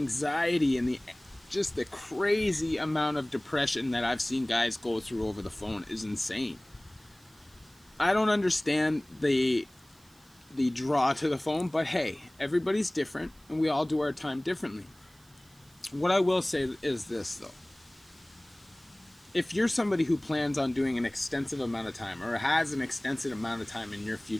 and just the crazy amount of depression that I've seen guys go through over the phone is insane. I don't understand the draw to the phone, but hey, everybody's different and we all do our time differently. What I will say is this though. If you're somebody who plans on doing an extensive amount of time or has an extensive amount of time in your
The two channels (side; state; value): right; noise; hiss, 29 dB below the sound